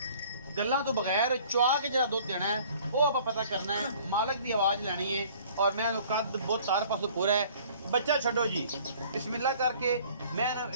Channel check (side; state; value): both; inverted; correlation -0.53